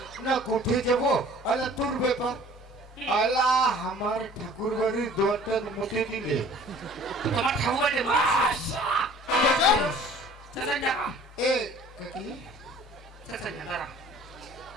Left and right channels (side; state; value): both; normal; correlation 0.50